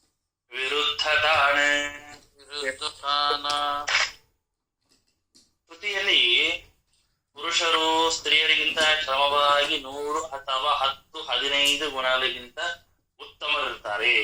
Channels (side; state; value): both; identical; correlation 1.00